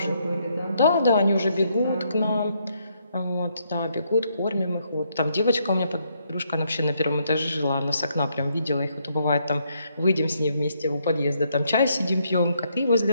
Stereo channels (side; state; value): both; inverted; correlation -0.74